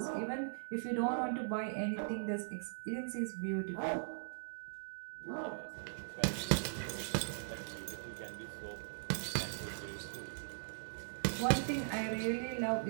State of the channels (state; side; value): silent; left; digital silence